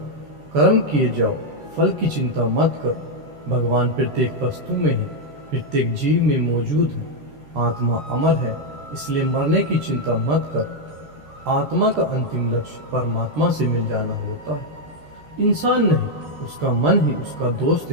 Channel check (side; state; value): left; late; 13 ms